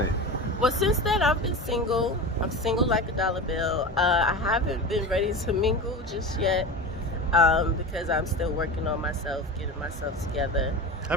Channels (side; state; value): both; normal; correlation 0.28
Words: Well, since then, I've been single. I'm single like a dollar bill. I haven't been ready to mingle just yet because I'm still working on myself, getting myself together. How